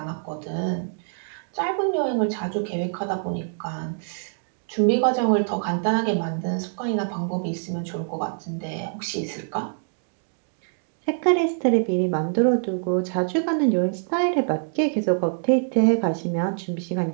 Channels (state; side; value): silent; left; digital silence